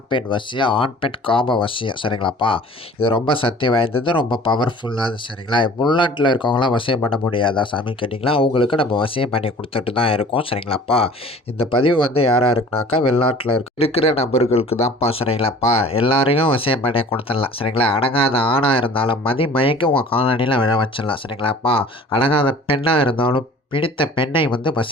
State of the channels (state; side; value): normal; both; correlation 0.47